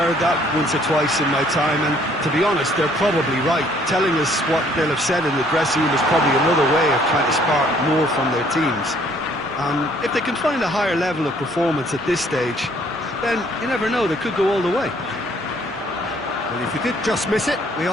that once or twice in my time, and to be honest, they're probably right. Telling us what they'll have said in the dressing room is probably another way of trying to spark more from their teams. If they can find a higher level of performance at this stage, then you never know, they could go all the way. Well, if you did just miss it, we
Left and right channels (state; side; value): noise; left; hum, 28 dB below the sound